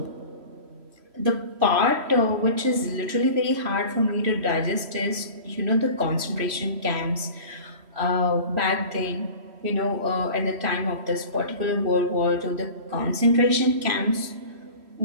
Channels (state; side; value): late; left; 3.1 ms